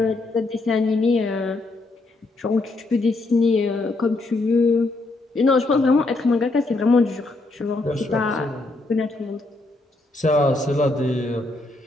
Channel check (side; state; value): right; quieter; 3.1 dB